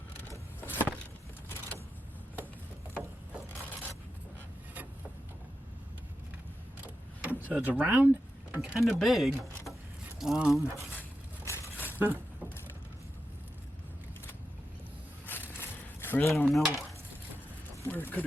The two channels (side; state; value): both; normal; correlation 0.89